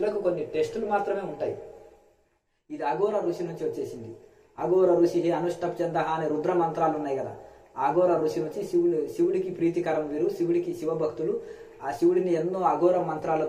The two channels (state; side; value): identical; both; correlation 1.00